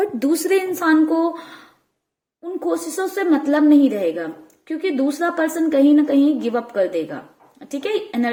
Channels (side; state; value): both; identical; correlation 1.00